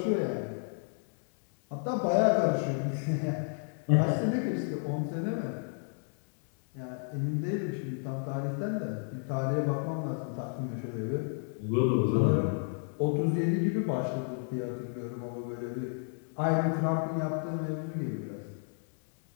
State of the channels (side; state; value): right; silent; 56 dB below the other